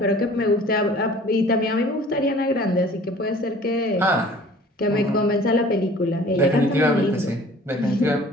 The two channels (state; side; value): normal; both; correlation 0.49